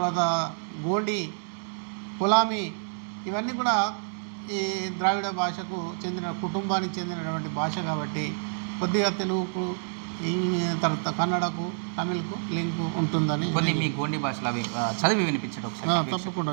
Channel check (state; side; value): silent; left; digital silence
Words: గోండి, కొలామి, ఇవన్నీ కూడా ఈ ద్రావిడ భాషకు చెందిన కుటుంబానికి చెందినటువంటి భాష. కాబట్టి కొద్దిగా తెలుగుకు, తర్వాత కన్నడకు, తమిళ్కు లింకు ఉంటుందని. కొన్ని మీ గోండి భాషలో అవి చదివి వినిపించడం ఒకసారి. తప్పకుండా